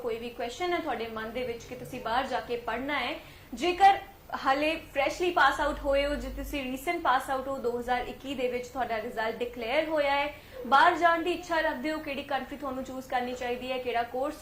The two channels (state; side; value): identical; both; correlation 1.00